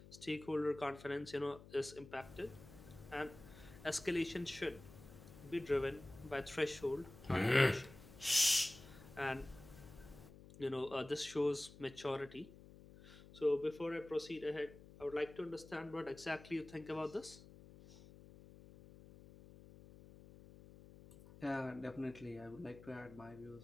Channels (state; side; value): noise; left; hum, 18 dB below the sound